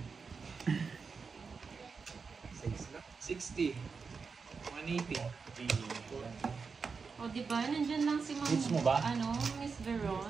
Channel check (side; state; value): left; quieter; 5.1 dB